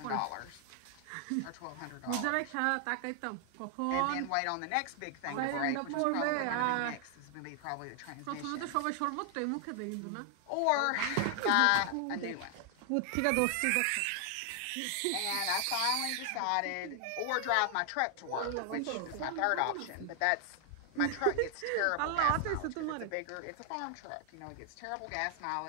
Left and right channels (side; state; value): both; different; correlation 0.00